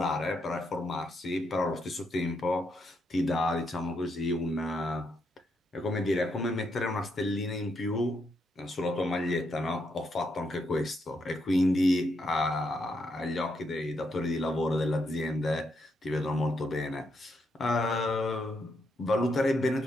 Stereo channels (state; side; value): normal; both; correlation 0.79